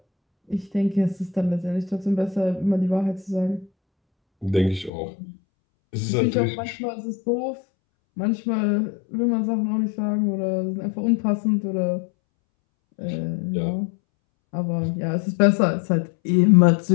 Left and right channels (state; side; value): drops out; right; at 4.9 s